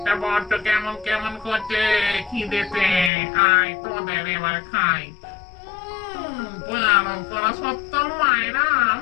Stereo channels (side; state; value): right; drops out; at 3.1 s